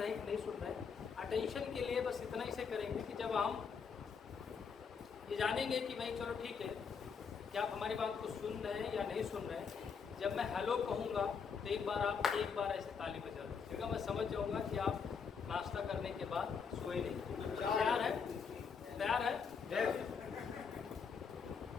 हैं कि नहीं सुन रहे हैं। अटेंशन के लिए बस इतना ही से करेंगे कि जब हम ये जानेंगे कि भाई चलो ठीक है कि आप हमारी बात को सुन रहे हैं या नहीं सुन रहे हैं, जब मैं हेलो कहूँगा तो एक बार ऐसे ताली बजा दीजिएगा। मैं समझ जाऊँगा कि आप नाश्ता करने के बाद सोए नहीं। तैयार है? तैयार है?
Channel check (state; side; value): quieter; right; 6.1 dB